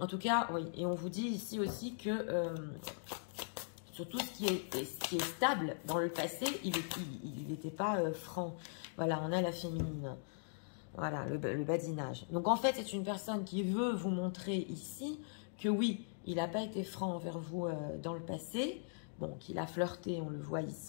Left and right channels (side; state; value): right; silent; digital silence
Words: tout cas, oui, et on vous dit ici aussi que sur tout ce qui est stable dans le passé, il n'était pas franc. Voilà, on a la féminine. Voilà, le badinage. Donc en fait, c'est une personne qui veut vous montrer ici que oui, il n'a pas été franc envers vous dans le passé. Bon, qu'il a flirté, on le voit